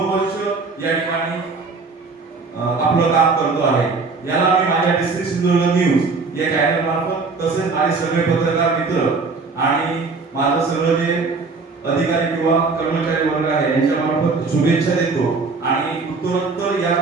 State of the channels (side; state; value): left; quieter; 4.2 dB